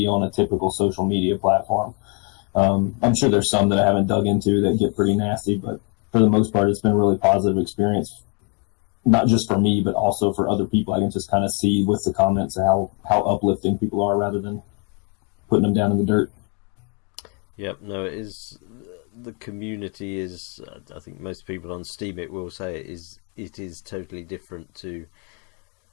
on a typical social media platform. I'm sure there's some that I haven't dug into that get pretty nasty, but for the most part, it's been a really positive experience, not just for me, but also for other people. I can just kind of see with the comments how uplifting people are rather than putting them down in the dirt. Yep, no, it is. The community is, I think most people on Steam will say it is totally different to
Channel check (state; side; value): quieter; right; 35.8 dB